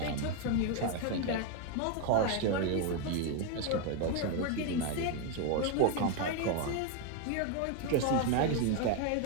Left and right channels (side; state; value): both; different; correlation 0.01